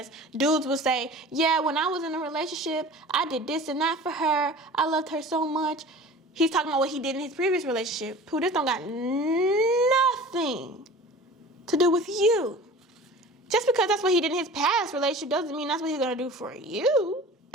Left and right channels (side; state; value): both; normal; correlation 0.40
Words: dudes will say, yeah, when I was in a relationship, I did this and that for her. I loved her so much. He's talking about what he did in his previous relationship. Pooh, this don't got nothing to do with you. Just because that's what he did in his past relationship doesn't mean that's what he's going to do for you.